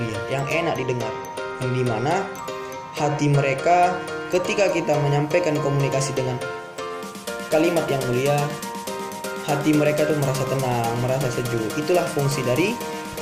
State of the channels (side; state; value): both; identical; correlation 1.00